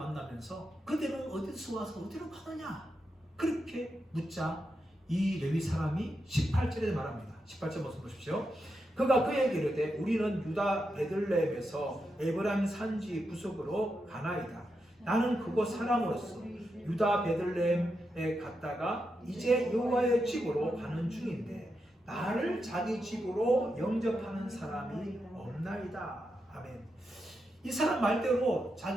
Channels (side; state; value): both; normal; correlation 0.86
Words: 만나면서 그대는 어디서 와서 어디로 가느냐 그렇게 묻자 이 레위 사람이 18절에 말합니다. 18절 말씀 보십시오. 그가 그에게 이르되 우리는 유다 베들레헴에서 에브라임 산지 구석으로 가나이다. 나는 그곳 사람으로서 유다 베들레헴에 갔다가 이제 여호와의 집으로 가는 중인데 나를 자기 집으로 영접하는 사람이 없나이다. 아멘. 이 사람 말대로